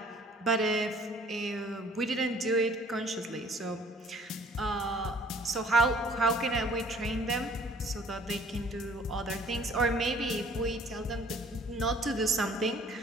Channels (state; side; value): normal; both; correlation 0.56